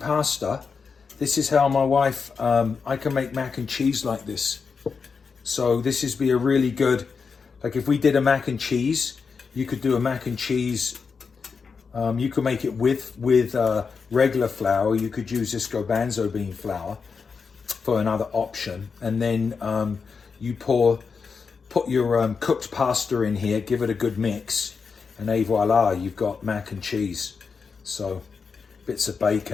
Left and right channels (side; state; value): right; quieter; 5.4 dB